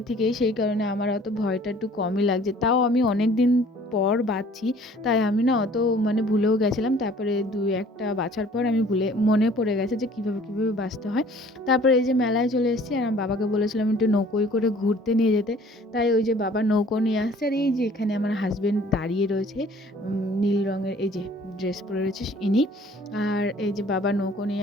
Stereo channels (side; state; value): both; normal; correlation 0.53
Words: থেকেই, সেই কারণে আমার অত ভয়টা একটু কমই লাগছে। তাও আমি অনেক দিন পর বাছছি, তাই আমি না অত ভুলেও গেছিলাম। তারপরে দুই একটা বাছার পর আমি মনে পড়ে গেছে যে কীভাবে কীভাবে বাছতে হয়। তারপরে এই যে মেলায় চলে এসেছি, আর আমার বাবাকে বলেছিলাম একটু নৌকোয় করে ঘুরতে নিয়ে যেতে। তাই ওই যে বাবা নৌকো নিয়ে আসছে, আর এই যে এখানে আমার হাজবেন্ড দাঁড়িয়ে রয়েছে, নীল রঙের এই যে ড্রেস পরে রয়েছে ইনি। আর এই যে বাবা নৌকো